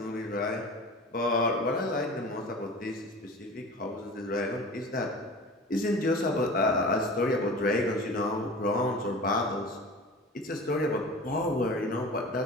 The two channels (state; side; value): normal; both; correlation 0.37